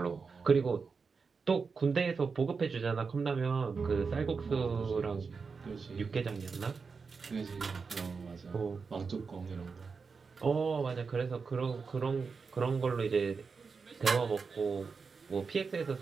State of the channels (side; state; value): left; quieter; 5.0 dB